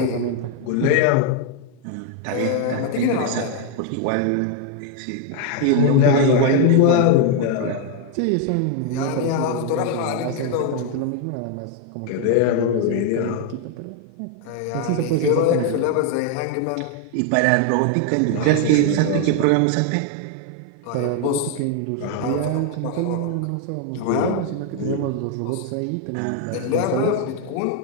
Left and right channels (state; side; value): different; both; correlation 0.00